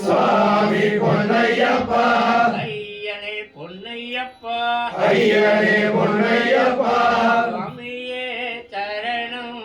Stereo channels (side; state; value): both; identical; correlation 1.00